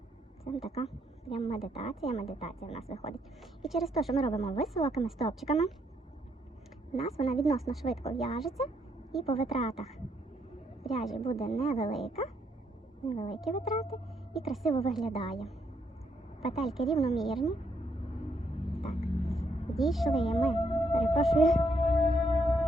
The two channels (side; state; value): both; normal; correlation 0.74